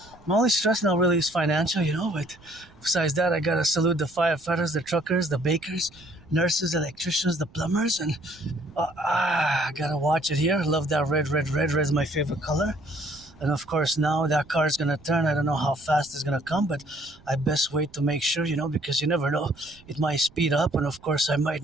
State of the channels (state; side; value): noise; right; rumble, 26 dB below the sound